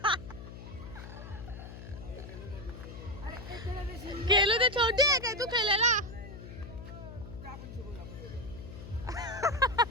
खेळू ते छोटी आहे काय तू खेळायला.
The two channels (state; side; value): noise; left; hum, 12 dB below the sound